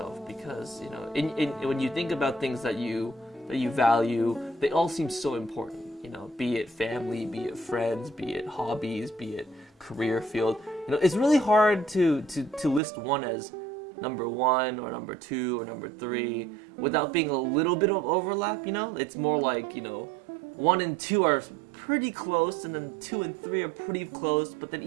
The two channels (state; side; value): drops out; left; at 12.8 s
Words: because when you think about things that you value, they all seem so important. Be it family, be it friends, be it hobbies, be it career field. It's really hard to list one as number 1 or number 2 or number 3 without being a little bit of overlap. It's more like 1 and 2 are pretty close, and then 2 and 3 are pretty close, but then